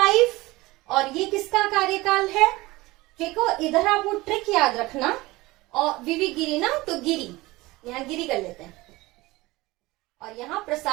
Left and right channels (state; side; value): quieter; left; 20.6 dB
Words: और ये किसका कार्यकाल है, देखो इधर आप वो ट्रिक याद रखना, और वीवी गिरी ना, तो गिरी, यहाँ गिरी कर लेते हैं, और यहाँ